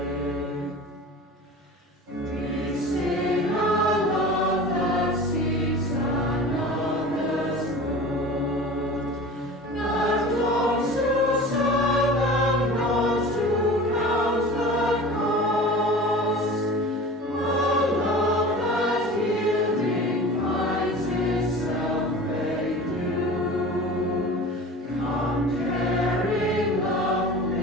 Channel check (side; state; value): both; normal; correlation 0.37